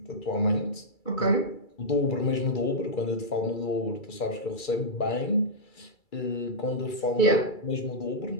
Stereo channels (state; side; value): late; right; 2.3 ms